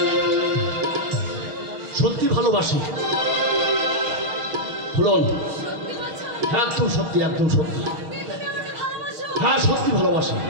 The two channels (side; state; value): left; late; 6.4 ms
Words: সত্যি ভালোবাসি ফুলন। হ্যাঁ, একদম সত্যি, একদম সত্যি। হ্যাঁ, সত্যি ভালোবাসি।